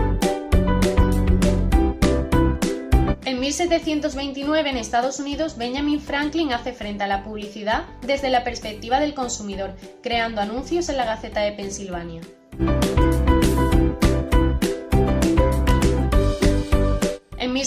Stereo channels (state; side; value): identical; both; correlation 1.00